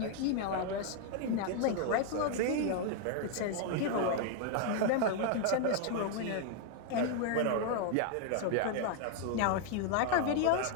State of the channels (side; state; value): both; different; correlation 0.00